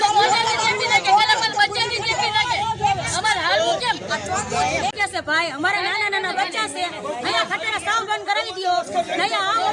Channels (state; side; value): identical; both; correlation 1.00